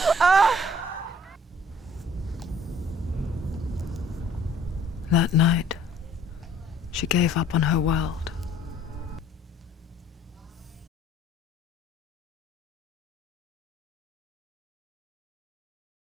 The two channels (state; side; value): normal; both; correlation 0.56